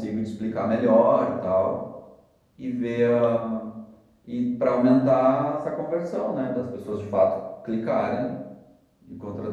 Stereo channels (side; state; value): both; identical; correlation 1.00